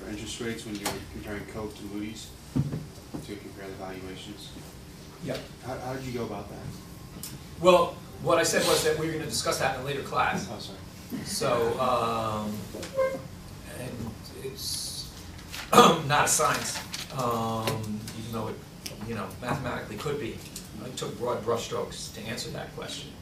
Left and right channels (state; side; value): identical; both; correlation 1.00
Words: interest rates when you were comparing Coke to Moody's to compare the valuations. Yep. How did you go about that? Well, what I said was that we were going to discuss that in a later class. Oh, sorry. So, and it's not a science, even though it, you know, mathematically could be. I took broad brushstrokes to answer that question.